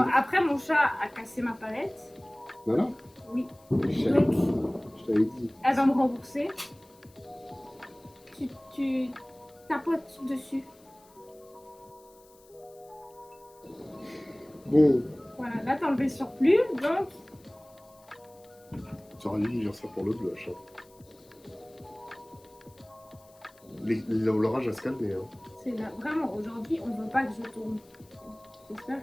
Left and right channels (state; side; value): noise; left; hiss, 28 dB below the sound